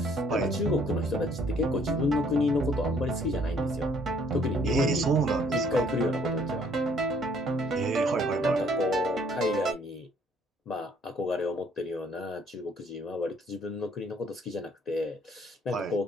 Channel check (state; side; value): normal; both; correlation 0.62